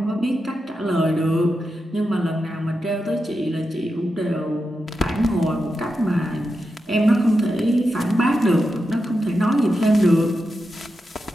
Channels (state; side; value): normal; both; correlation 0.88